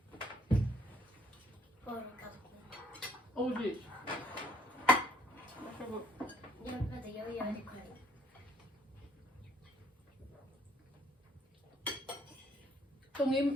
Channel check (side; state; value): both; normal; correlation 0.64